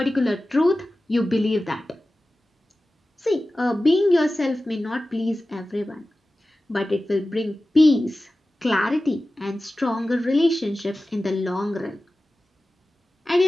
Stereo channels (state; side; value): normal; both; correlation 0.96